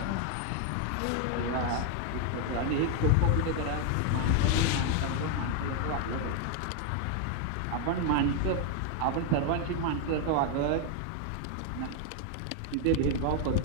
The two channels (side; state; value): both; different; correlation 0.00